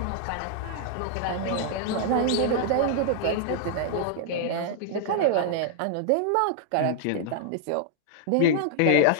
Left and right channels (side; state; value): both; different; correlation -0.01